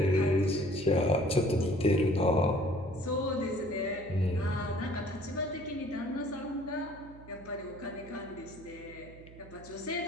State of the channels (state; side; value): noise; right; hum, 19 dB below the sound